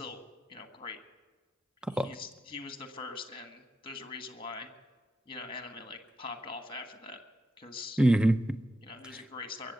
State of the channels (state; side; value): normal; both; correlation 0.87